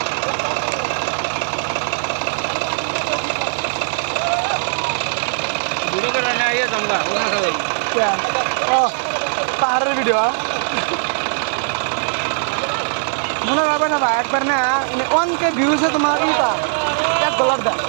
ভিডিও করে না ইয়ে জামগা ও পাহাড়ের ভিডিও মনে হবে না ভাই একবার না 1K ভিউসে তোমার ইটা $1 দেয়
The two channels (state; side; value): silent; left; 66 dB below the other